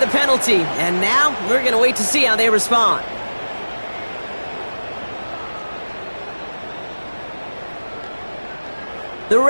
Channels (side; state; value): both; inverted; correlation -1.00